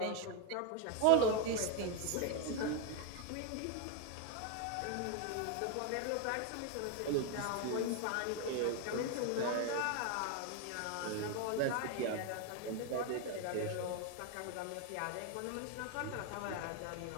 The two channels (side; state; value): both; different; correlation 0.01